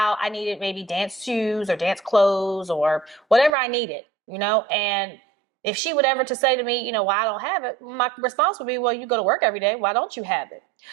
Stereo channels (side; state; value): left; drops out; at 3.5 s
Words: I needed maybe dance shoes or dance clothes or whatever I needed, and if she would ever to say to me, why I don't have it, my response would be, well, you go to work every day. Why don't you have it?